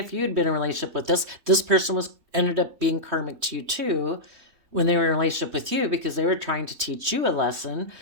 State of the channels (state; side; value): late; left; 3.2 ms